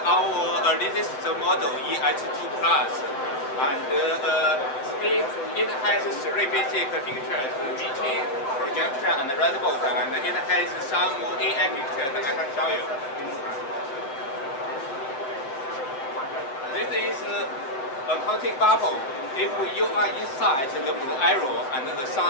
our latest model EH2 Plus, and it has three basic features: meeting, projection, and redbook, and it has some AI features I can show you. This is a counting bubble. If you are inside the blue arrow and the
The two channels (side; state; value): right; late; 7.6 ms